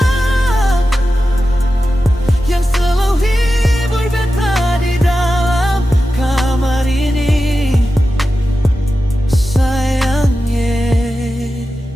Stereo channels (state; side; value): normal; both; correlation 0.92